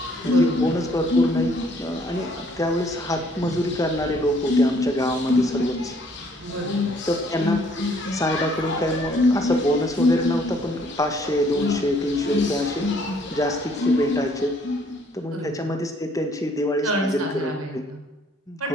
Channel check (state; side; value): normal; both; correlation 0.63